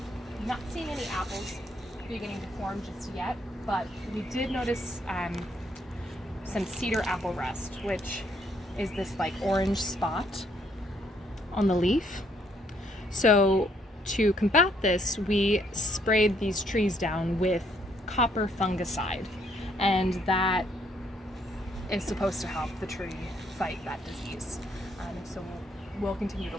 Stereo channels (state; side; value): normal; both; correlation 0.69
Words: Not seeing any apples beginning to form just yet, but we did notice some cedar apple rust, which is this like orange spot on the leaf. So to combat this, we sprayed these trees down with copper fungicide, and that is supposed to help the tree fight that disease. So we'll continue to